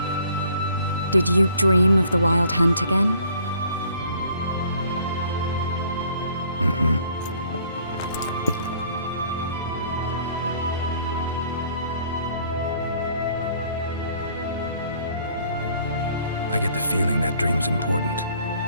Did you dream of the wild hunt again? Mm-hmm. I get the feeling that dream's important.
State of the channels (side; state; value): both; inverted; correlation -0.59